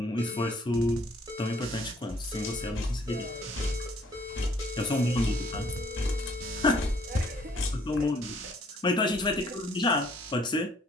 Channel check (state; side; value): normal; both; correlation 0.62